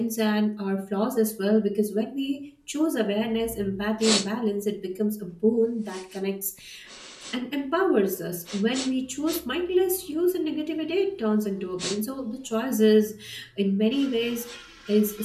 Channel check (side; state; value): both; identical; correlation 1.00